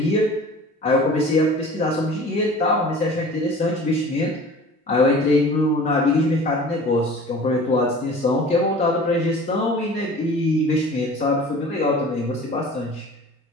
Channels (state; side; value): normal; both; correlation 0.42